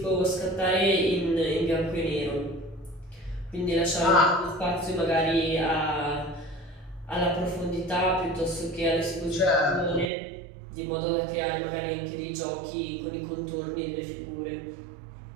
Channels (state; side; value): drops out; left; at 10.1 s